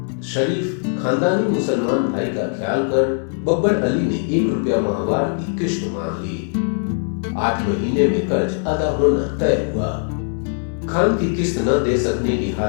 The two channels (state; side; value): silent; right; digital silence